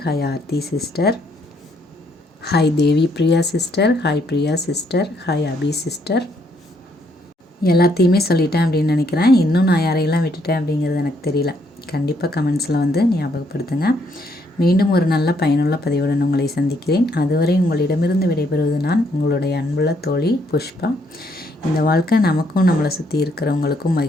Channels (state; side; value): normal; both; correlation 0.71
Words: hi Aarthi sister, hi Devi Priya sister, hi Priya sister, hi Abi sister. எல்லாத்தையுமே சொல்லிட்டேன் அப்படின்னு நினைக்கிறேன். இன்னும் நான் யாரையெல்லாம் விட்டுட்டேன் அப்படிங்கிறது எனக்கு தெரியல. கண்டிப்பாக கமெண்ட்ஸில் வந்து ஞாபகப்படுத்துங்க. மீண்டும் ஒரு நல்ல பயனுள்ள பதிவுடன் உங்களை சந்திக்கிறேன். அதுவரை உங்களிடமிருந்து விடைபெறுவது நான் உங்களுடைய அன்புள்ள தோழி புஷ்பா. இந்த வாழ்க்கை நமக்கும் நம்மளை சுற்றி இருக்கிறவங்களுக்கும்